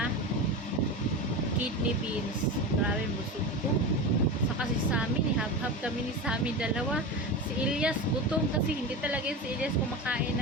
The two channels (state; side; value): normal; both; correlation 0.24